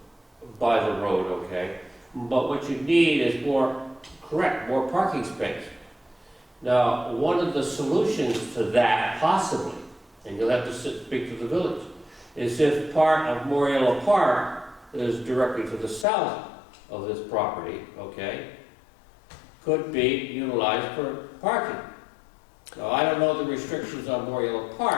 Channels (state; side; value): drops out; right; at 16.1 s